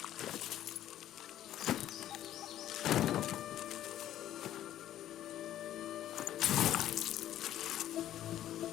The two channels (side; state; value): right; quieter; 12.3 dB